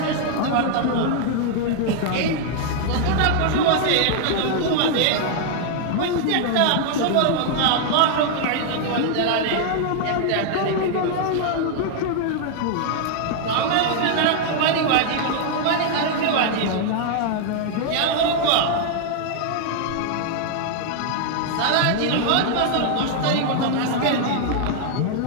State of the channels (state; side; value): different; both; correlation 0.00